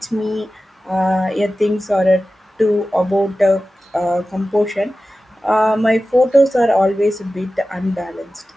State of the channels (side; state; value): both; normal; correlation 0.95